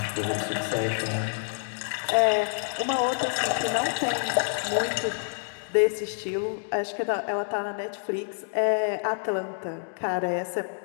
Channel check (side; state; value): right; silent; digital silence